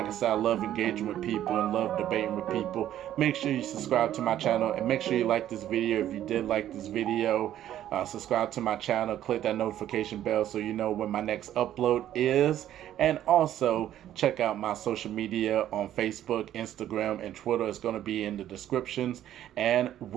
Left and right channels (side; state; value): left; quieter; 11.9 dB